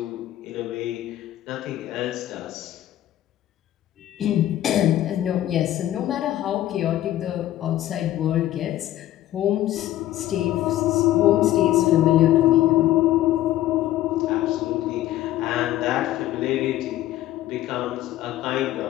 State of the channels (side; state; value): right; quieter; 13.9 dB